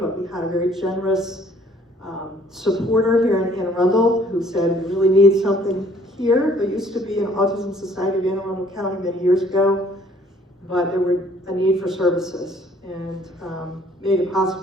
we had a very generous supporter here in Anne Arundel who said, we really need something here. There used to be an Autism Society of Anne Arundel County many years ago, but there were a need for services, and made it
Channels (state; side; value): normal; both; correlation 0.59